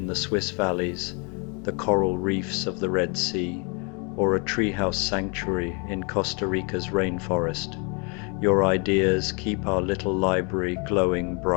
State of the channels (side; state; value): right; quieter; 34.1 dB